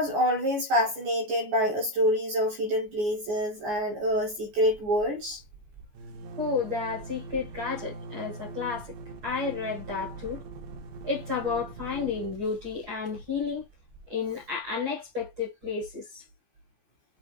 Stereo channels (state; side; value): late; left; 14 ms